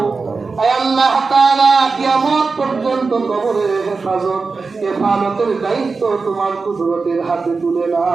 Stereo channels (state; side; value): quieter; left; 4.4 dB